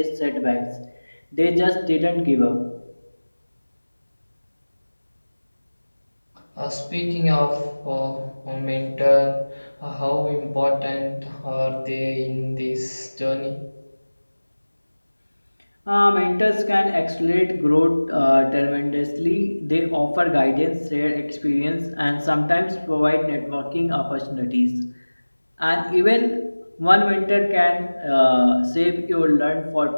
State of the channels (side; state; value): both; inverted; correlation -1.00